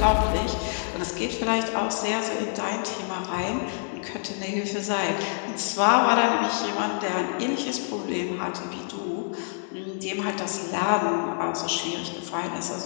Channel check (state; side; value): silent; right; digital silence